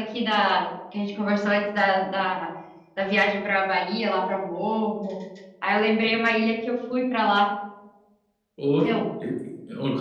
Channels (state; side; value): identical; both; correlation 1.00